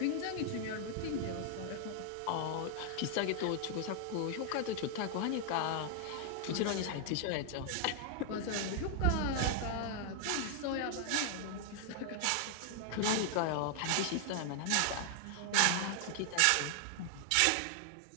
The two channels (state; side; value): different; both; correlation 0.00